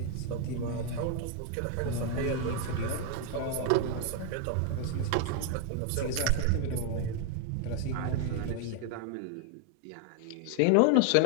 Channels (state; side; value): different; both; correlation 0.01